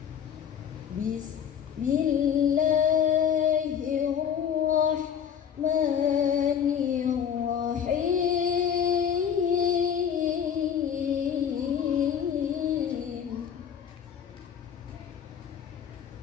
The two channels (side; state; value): right; quieter; 8.2 dB